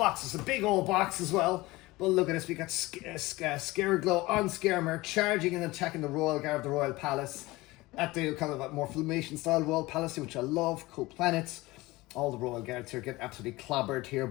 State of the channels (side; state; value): right; quieter; 20.5 dB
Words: It's a big old box as well. But look at this. We got Scareglow on Mare charging and attacking the Royal Guard of the Royal Palace at the kind of more Filmation style Royal Palace, which I love. Cool planets. All the Royal Guards here get absolutely clobbered here